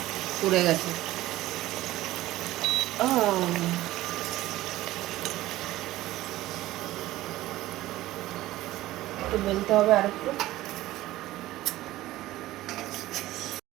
পুড়ে গেছে। একটু বেলতে হবে আরেকটু।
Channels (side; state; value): left; quieter; 16.2 dB